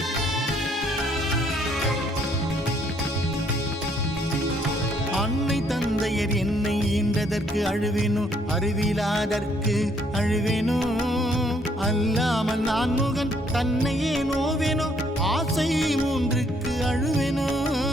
அன்னை தந்தையர் என்னை ஈன்றதற்கு அழுவேனோ அறிவிலாதற்கு அழுவேனோ அல்லாமல் நான் முகன் தன்னையே நோவேனோ ஆசை மூன்றுக்கு அழுவேனோ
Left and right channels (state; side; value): normal; both; correlation 0.67